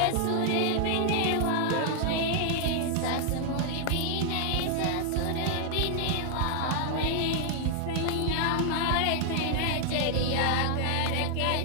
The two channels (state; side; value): different; both; correlation 0.00